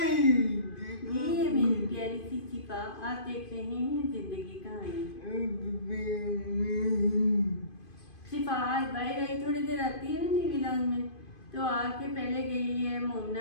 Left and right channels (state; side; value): late; right; 2.5 ms